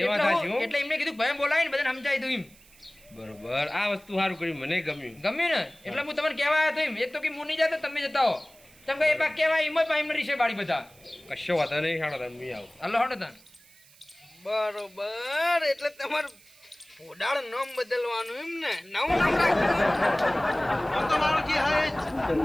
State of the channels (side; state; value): right; noise; hiss, 26 dB below the sound